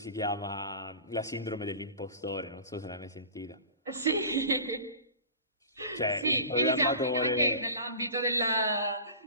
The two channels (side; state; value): both; inverted; correlation -0.38